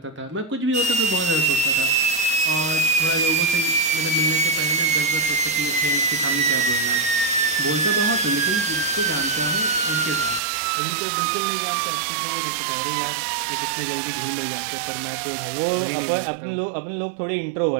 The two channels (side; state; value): left; drops out; at 10.4 s